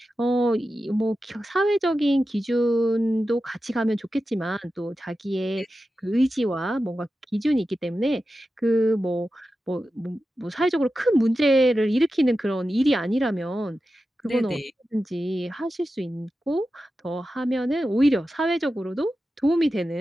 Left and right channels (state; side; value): normal; both; correlation 0.92